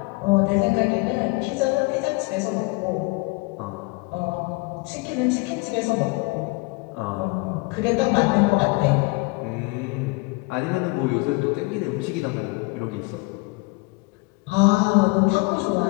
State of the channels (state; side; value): quieter; right; 26.4 dB